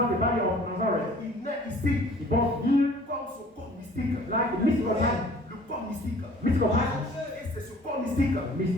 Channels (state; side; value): normal; both; correlation 0.51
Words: the body of Nazareth. Il naît ici He born here comme son corps mystique. like the mystical body. Le corps mystique. Mystical body. Et c'est ce corps mystique,